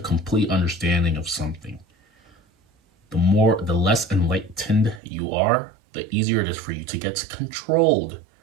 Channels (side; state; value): left; drops out; at 5.0 s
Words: understanding of something. The less enlightened you are, the easier it is for you to get controlled